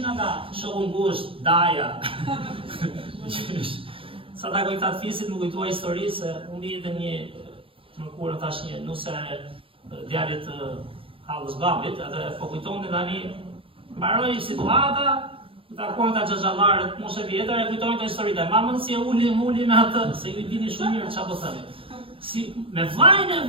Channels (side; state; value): left; late; 0.26 ms